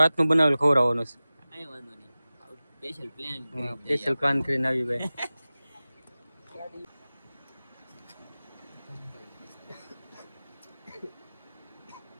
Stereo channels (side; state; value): both; inverted; correlation -0.97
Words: હાથનું બનાવેલું ખવડાવવાનું છે. કાંઈ વાંધો નહીં, સ્પેશિયલ પ્લાન સ્પેશિયલ પ્લાન કરીને આવી ભાઈ.